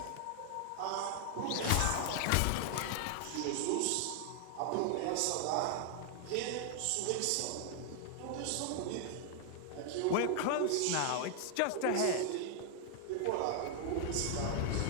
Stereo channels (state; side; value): different; both; correlation 0.00